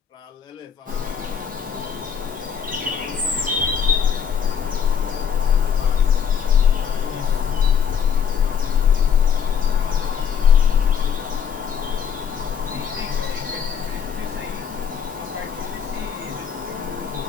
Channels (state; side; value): quieter; right; 7.5 dB